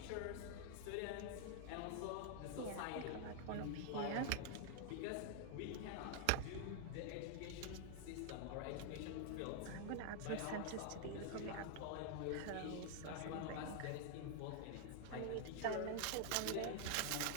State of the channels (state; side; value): different; both; correlation 0.00